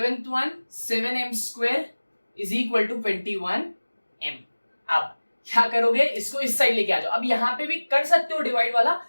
one, 7m² is equal to 21m। अब क्या करोगे, इसको इस साइड लेके आ जाओ। अब यहाँ पे भी कर सकते हो डिवाइड वाला,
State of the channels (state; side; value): inverted; both; correlation -1.00